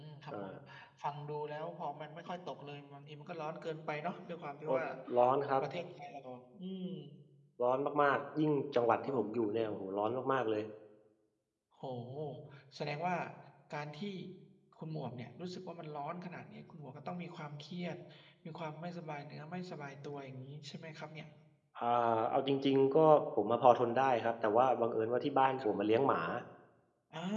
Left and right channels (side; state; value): both; identical; correlation 1.00